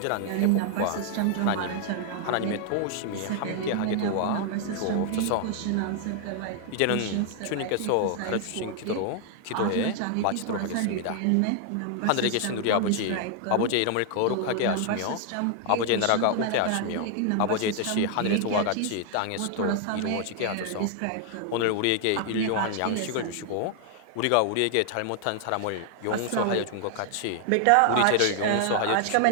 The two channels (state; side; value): different; both; correlation 0.00